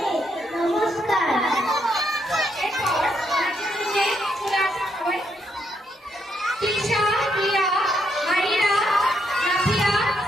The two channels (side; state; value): both; normal; correlation 0.76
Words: নমস্কার। এরপর নাচের দিকে চলে আসা সবাই। তৃষা, হিয়া, মাহিরা, নাফিয়া,